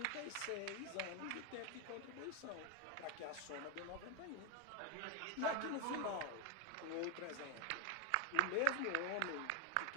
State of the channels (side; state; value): both; different; correlation 0.01